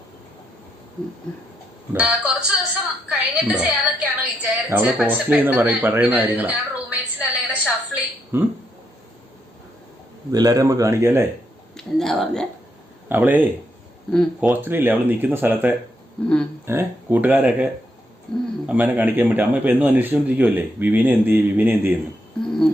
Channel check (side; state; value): both; normal; correlation 0.79